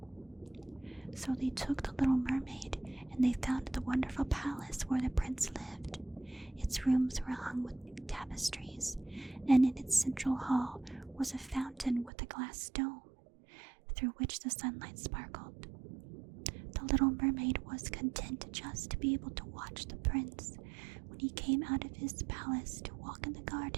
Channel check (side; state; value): left; drops out; at 12.1 s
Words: So they took the Little Mermaid, and they found the wonderful palace where the prince lived. Its rooms were hung with tapestries, and in its central hall was a fountain with a glass dome, through which the sunlight sparkled. The Little Mermaid was content just to be able to watch the prince when he came out of his palace to walk in the